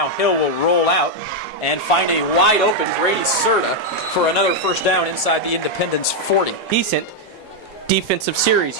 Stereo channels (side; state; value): both; normal; correlation 0.00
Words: Hill will roll out and find a wide open Grady Serta for another first down inside the Independence 40. Decent defensive series